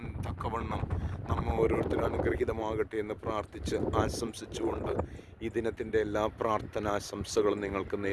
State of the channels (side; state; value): both; identical; correlation 1.00